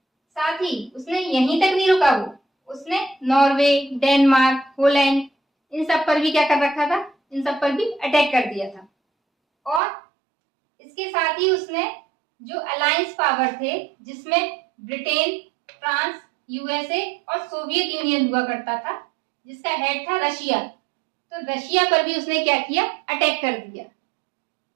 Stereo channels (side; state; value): left; drops out; at 9.8 s